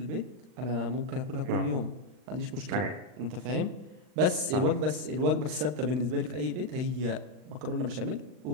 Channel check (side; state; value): left; late; 39 ms